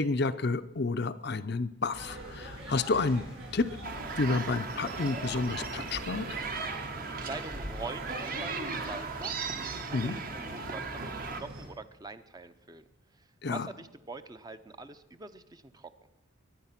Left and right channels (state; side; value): normal; both; correlation 0.37